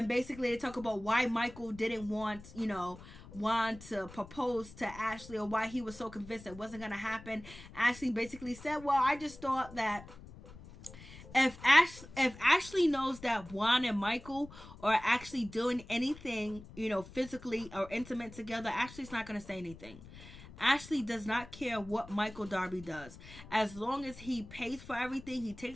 basically they talk about why Michael didn't want to propose to Ashley, or why he was so convinced it wasn't going to happen. Ashley basically said, well, I just thought that if Ashley knows that Juan and Michael are actually doing anything, you know, physically or intimate together, Ashley's not going to say anything. Ashley does not care what Michael Darby does. As long as he pays for everything, he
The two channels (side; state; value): left; noise; rumble, 17 dB below the sound